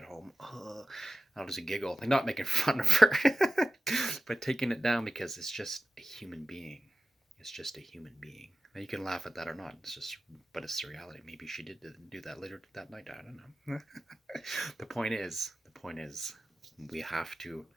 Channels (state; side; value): normal; both; correlation 0.94